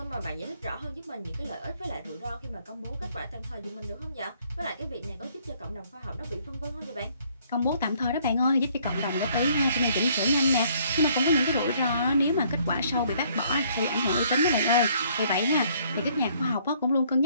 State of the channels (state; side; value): inverted; both; correlation -0.64